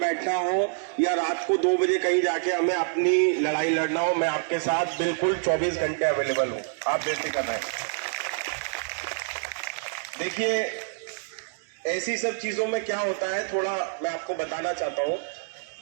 हो या रात को 2 बजे कहीं जाके हमें अपनी लड़ाई लड़ना हो, मैं आपके साथ बिल्कुल 24 घंटे अवेलेबल हूँ। आप बेफिक्र रहें। देखिए, ऐसी सब चीजों में क्या होता है, थोड़ा मैं आपको बताना चाहता हूँ।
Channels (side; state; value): left; silent; digital silence